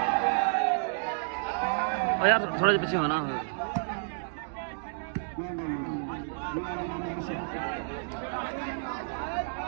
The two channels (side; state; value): left; silent; digital silence